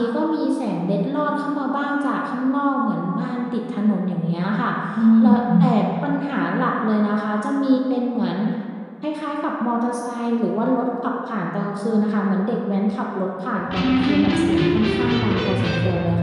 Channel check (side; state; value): both; identical; correlation 1.00